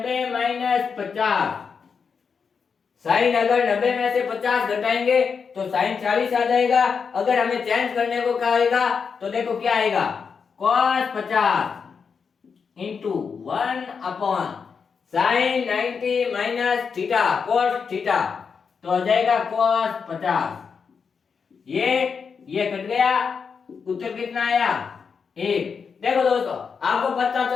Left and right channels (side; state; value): right; quieter; 5.9 dB